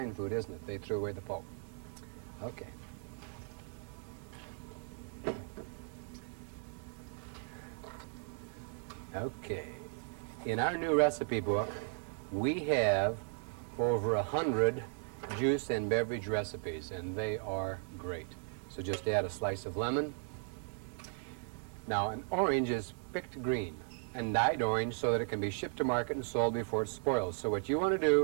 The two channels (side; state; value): left; silent; 53 dB below the other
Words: food, isn't it? They threw away the pulp. Okay. Okay. In our new recipe book, we have over 100 juice and beverage recipes, and they are great. So just add a slice of lemon. Now, an orange is picked green and dyed orange so that it can be shipped to market and sold before it spoils. So what you want to